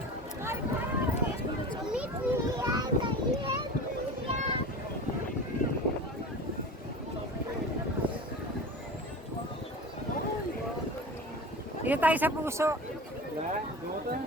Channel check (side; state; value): both; normal; correlation 0.33